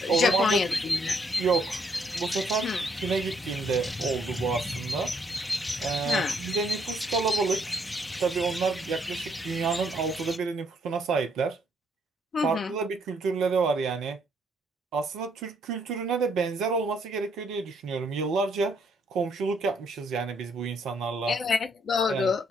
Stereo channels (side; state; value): both; normal; correlation 0.70